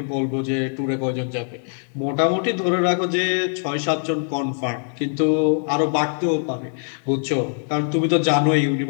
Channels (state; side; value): silent; right; 64 dB below the other